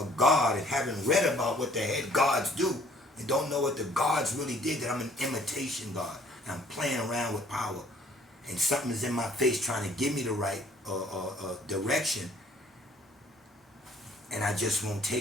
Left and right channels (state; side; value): normal; both; correlation 0.59